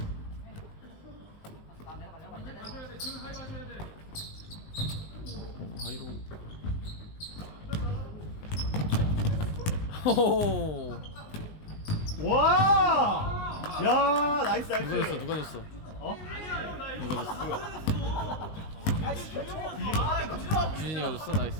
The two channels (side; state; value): right; late; 19 ms